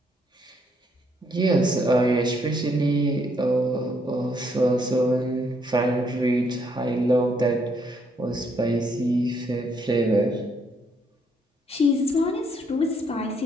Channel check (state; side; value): normal; both; correlation 0.71